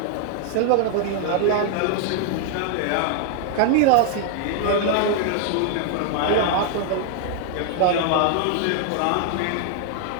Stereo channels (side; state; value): both; different; correlation 0.00